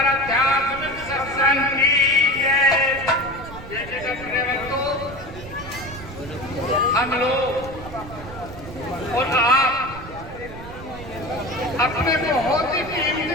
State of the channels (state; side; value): noise; right; rumble, 13 dB below the sound